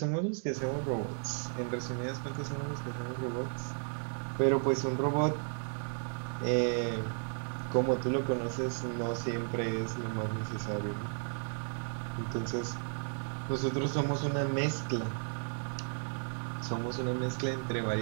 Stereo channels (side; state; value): left; silent; 55 dB below the other